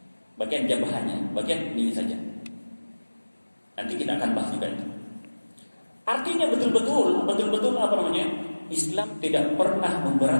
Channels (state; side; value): inverted; both; correlation -1.00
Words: Bagian jabahnya, bagian ini saja. Nanti kita akan bahas juga itu. Artinya betul-betul apa namanya? Islam tidak pernah